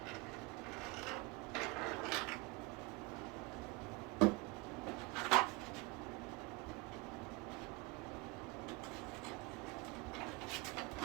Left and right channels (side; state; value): left; quieter; 24.0 dB